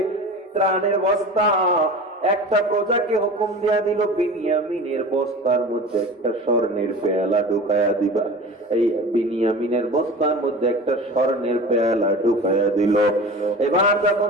ত্রাণের বস্তা। একটা প্রজাকে হুকুম দিয়া দিল, বিনিয়ামিনের বস্তার মধ্যে একটা স্বর্ণের পেয়ালা ঢুকায়া দিবা। এই বিনিয়ামিনের বস্তার মধ্যে একটা স্বর্ণের পেয়ালা ঢুকায়া দিল। এবার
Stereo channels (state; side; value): normal; both; correlation 0.35